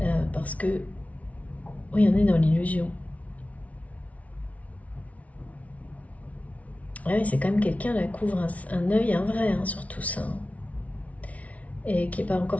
Parce que oui, on est dans l'illusion. Ouais, c'est quand même quelqu'un qui couvre un œil, un vrai, hein, sur tout ça. Et qui n'est pas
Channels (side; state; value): right; late; 0.068 ms